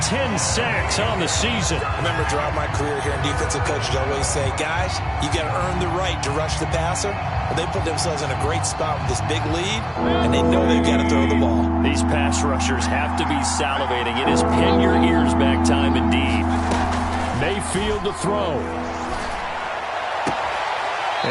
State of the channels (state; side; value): identical; both; correlation 1.00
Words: 10 sacks on the season. I remember throughout my career here in defensive coaches always say, guys, you got to earn the right to rush the passer. Well, they put themselves in a great spot with this big lead, and they know they've got to throw the ball. These pass rushers have to be salivating. It is pin your ears back time indeed. Mayfield to throw.